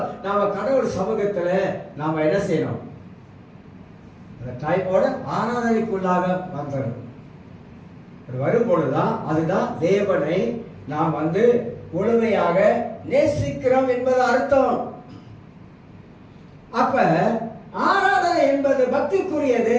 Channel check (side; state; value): both; identical; correlation 1.00